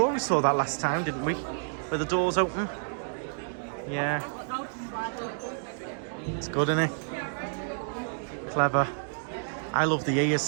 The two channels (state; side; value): silent; left; digital silence